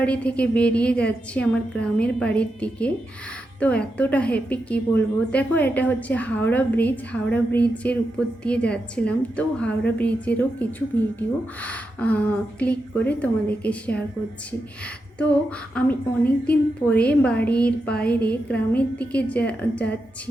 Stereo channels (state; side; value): normal; both; correlation 0.87